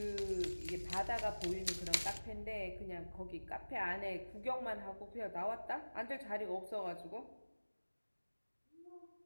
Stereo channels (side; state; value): both; inverted; correlation -1.00